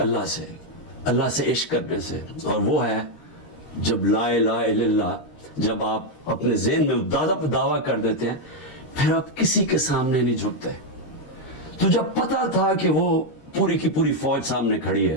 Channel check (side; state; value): right; late; 13 ms